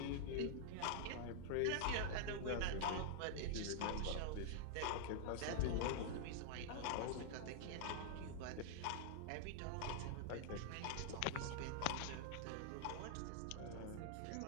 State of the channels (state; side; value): different; both; correlation -0.01